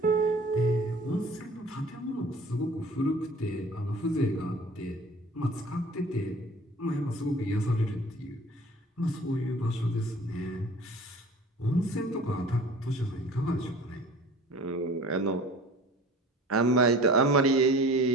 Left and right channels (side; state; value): both; normal; correlation 0.44